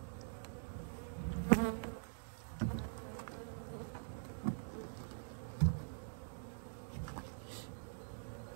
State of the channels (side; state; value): left; silent; digital silence